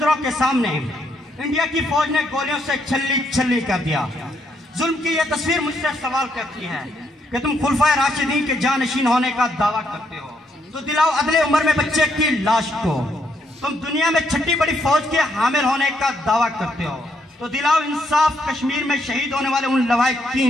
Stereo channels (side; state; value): both; normal; correlation 0.75